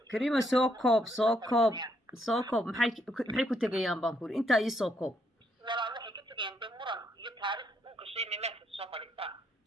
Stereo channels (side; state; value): both; normal; correlation 0.74